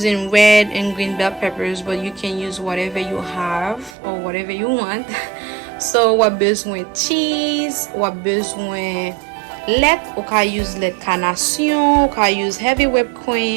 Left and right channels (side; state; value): left; drops out; at 4.0 s